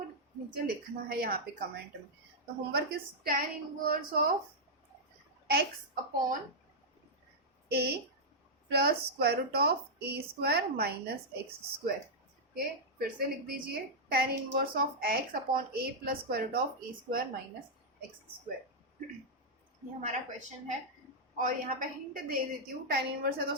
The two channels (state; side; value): normal; both; correlation -0.06